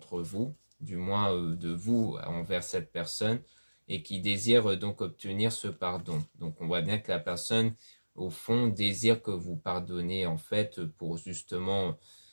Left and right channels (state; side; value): inverted; both; correlation -1.00